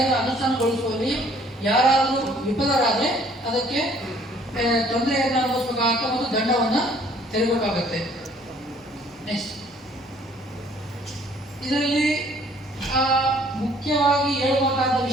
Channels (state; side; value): normal; both; correlation 0.59